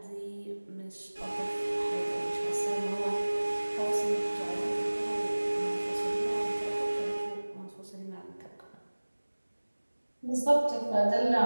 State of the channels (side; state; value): both; inverted; correlation -1.00